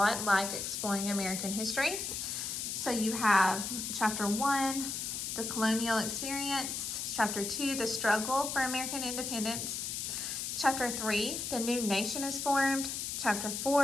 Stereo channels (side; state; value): left; noise; hiss, 3 dB below the sound